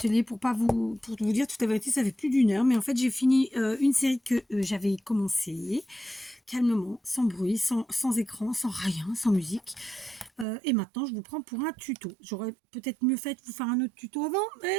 pour vous dire toute la vérité, ça fait plus d'une heure. Mais en fait, j'ai fini une série que j'avais commencé calmement, sans bruit, sans écran, sans rien, sans musique. Et maintenant, je vous prends pour un tuto. J'aurais peut-être mieux fait de vous faire un autre tuto avant,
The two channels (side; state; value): left; drops out; at 10.5 s